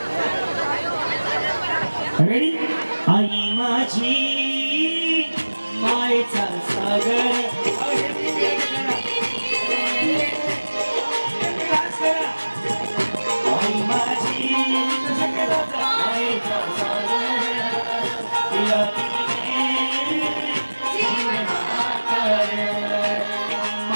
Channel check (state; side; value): inverted; both; correlation -1.00